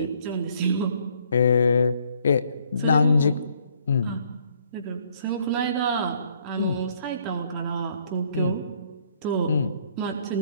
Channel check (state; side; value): inverted; both; correlation -0.65